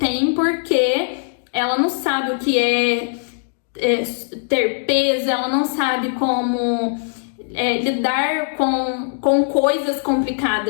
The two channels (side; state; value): right; silent; digital silence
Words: porque ela não sabe o que é ter peso, ela não sabe como lidar com coisas